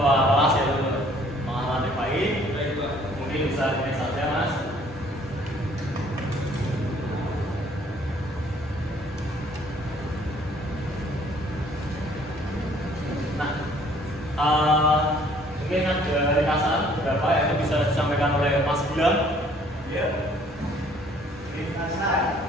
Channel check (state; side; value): normal; both; correlation 0.59